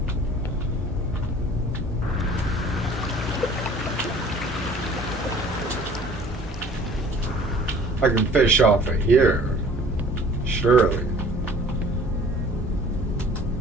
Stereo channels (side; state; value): both; normal; correlation 0.50